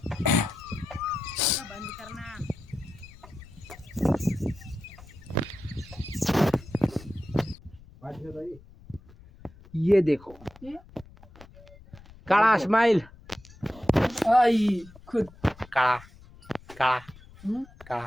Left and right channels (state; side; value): noise; left; rumble, 22 dB below the sound